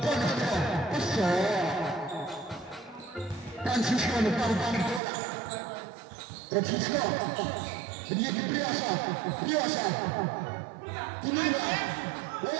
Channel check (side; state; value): left; drops out; at 5.0 s